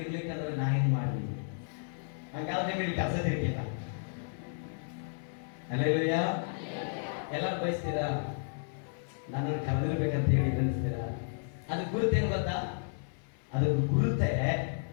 ಇರ್ಲಿಕ್ಕಂದ್ರೆ ನಾ ಏನ್ ಮಾಡ್ಲಿ? ಹಂಗಾದ್ರೆ ನಿಮಗೆ ಕೆಲಸ ತಿರ್ಲಿಲ್ಲ. ಅಲ್ಲೆಲ್ಲಯ್ಯ ಎಲ್ಲರೂ ಬಯಸ್ತೀರಾ ನನ್ನನ್ನು ಕರೆದಿರ್ಬೇಕಂತ ಹೇಳಿ ಅನಿಸ್ತೀರಾ? ಅದು ಗುರುತೇನು ಗೊತ್ತಾ? ಅದಕ್ಕೆ ಗುರುತೆ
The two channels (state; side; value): silent; right; 56 dB below the other